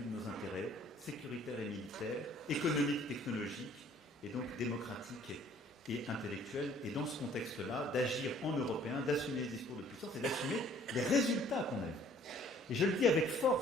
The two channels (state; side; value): normal; both; correlation 0.57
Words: de nos intérêts, sécuritaires et militaires, économiques, technologiques, et donc démocratiques et intellectuels, et dans ce contexte-là, d'agir en européen, d'assumer les discours de puissance et d'assumer les résultats qu'on a eus. Et je le dis avec